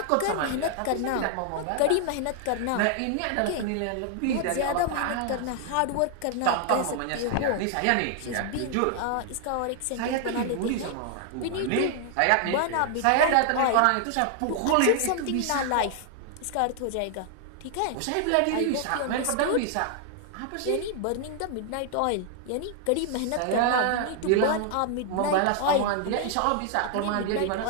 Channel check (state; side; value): different; both; correlation 0.00